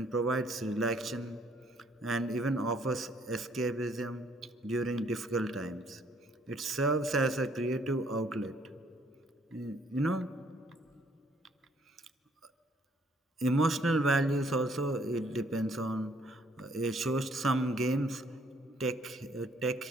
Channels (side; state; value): both; normal; correlation 0.64